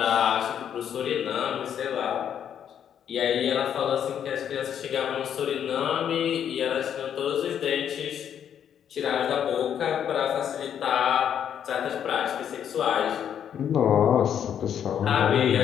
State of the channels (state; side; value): quieter; right; 9.0 dB